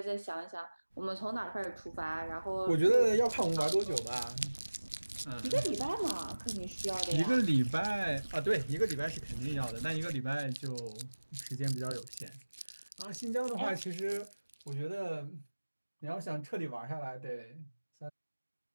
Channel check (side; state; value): both; inverted; correlation -1.00